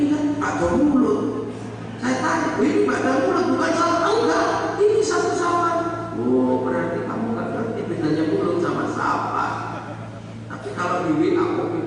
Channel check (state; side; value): identical; both; correlation 1.00